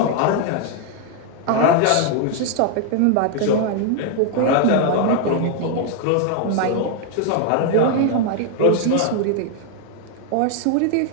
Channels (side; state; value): both; different; correlation 0.00